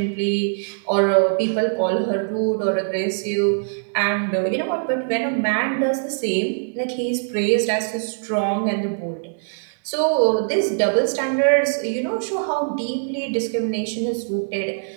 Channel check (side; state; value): left; silent; 64 dB below the other